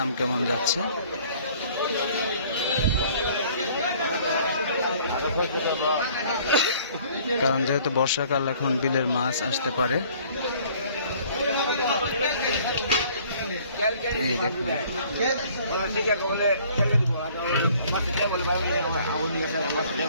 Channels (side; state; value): both; inverted; correlation -0.55